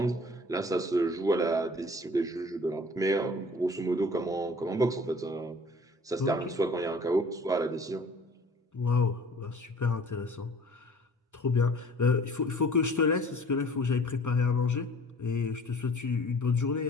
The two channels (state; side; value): normal; both; correlation 0.49